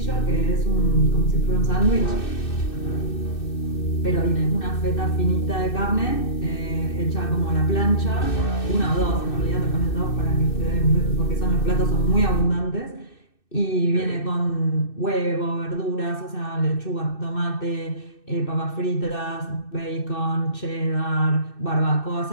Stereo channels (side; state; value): right; late; 2.6 ms